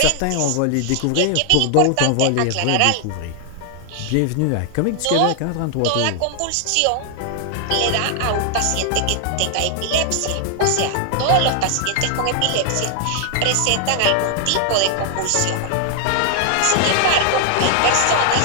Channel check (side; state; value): both; different; correlation 0.00